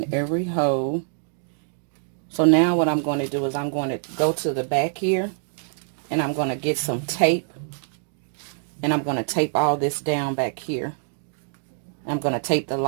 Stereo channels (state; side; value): silent; left; digital silence